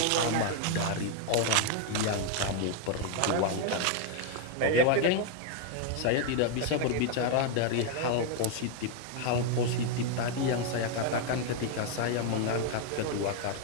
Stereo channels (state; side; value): different; both; correlation 0.01